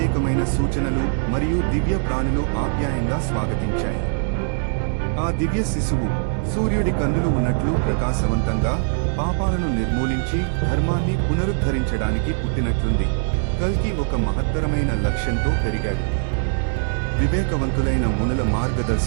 సూచనలు మరియు దివ్య ప్రాణులు ఆప్యాయంగా స్వాగతించాయి. ఆ దివ్య శిశువు సూర్యుడి కన్నులు ఉన్నట్లు ప్రకాశవంతంగా, పాపాలను నిర్మూలించి ధర్మాన్ని పునరుద్ధరించడానికి పుట్టినట్లుంది. కల్కి ఒక మహత్తరమైన లక్ష్యంతో పెరిగాడు. వివేకవంతులైన మునుల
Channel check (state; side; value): silent; left; digital silence